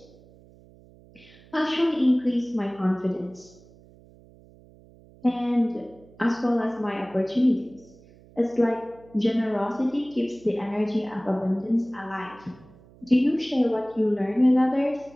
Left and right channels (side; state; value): right; noise; hum, 25 dB below the sound